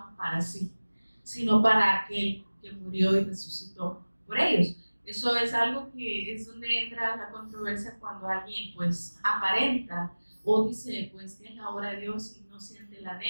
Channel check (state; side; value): inverted; both; correlation -1.00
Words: para sí, sino para aquel que murió y resucitó por ellos. Eso es algo que es donde entra la controversia cuando alguien pues aparenta o dice pues que es la obra de Dios y no siente el